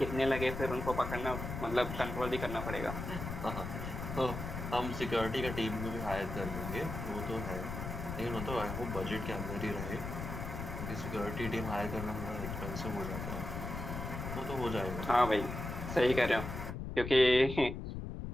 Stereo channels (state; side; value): noise; left; rumble, 6 dB below the sound